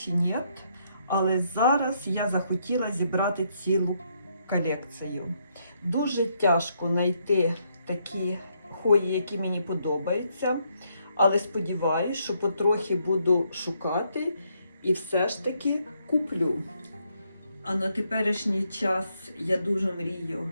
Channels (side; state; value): both; inverted; correlation -0.75